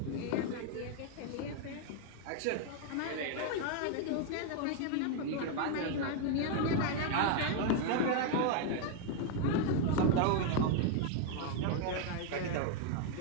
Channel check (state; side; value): different; both; correlation 0.01